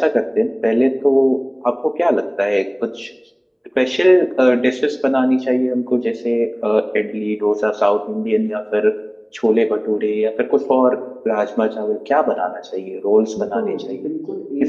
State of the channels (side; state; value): both; identical; correlation 1.00